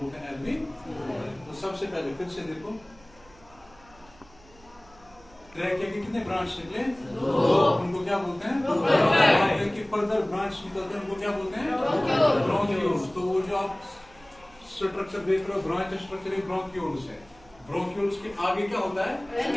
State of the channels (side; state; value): right; noise; hum, 26 dB below the sound